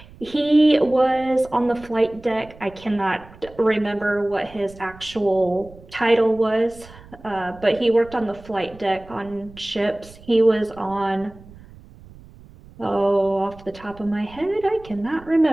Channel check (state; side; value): noise; right; rumble, 21 dB below the sound